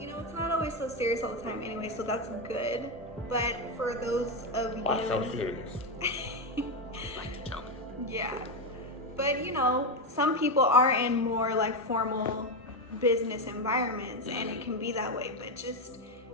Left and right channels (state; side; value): normal; both; correlation 0.09